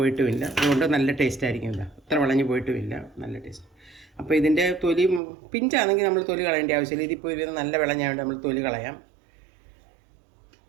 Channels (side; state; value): left; drops out; at 5.2 s